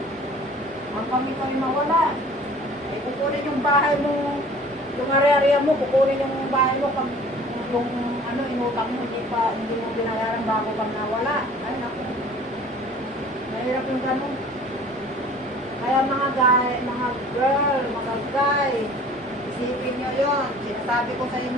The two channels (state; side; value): normal; both; correlation 0.48